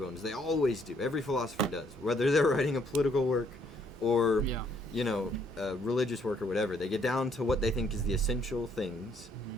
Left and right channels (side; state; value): both; normal; correlation 0.67